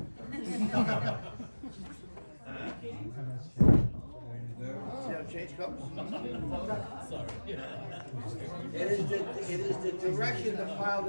See how it changed colors? Sorry. It is the direction the pile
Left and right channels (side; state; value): both; inverted; correlation -1.00